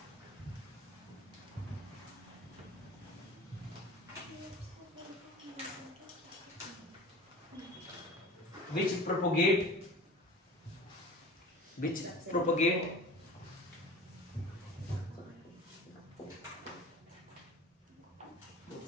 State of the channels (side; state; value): both; normal; correlation 0.39